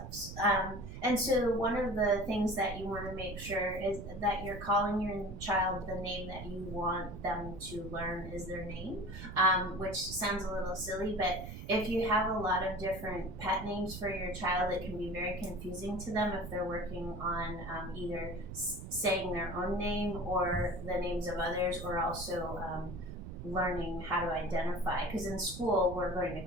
And so one of the things that you want to make sure is that you're calling your child the name that you want them to learn is their name, which sounds a little silly, but if you have a lot of different pet names for your child, it can be very confusing to them if they're working on either saying their own name or the names of others, or also learning how to identify, because in school we're going to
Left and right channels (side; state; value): right; noise; rumble, 10 dB below the sound